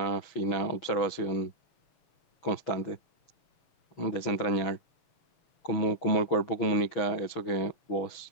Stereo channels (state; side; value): late; right; 6.3 ms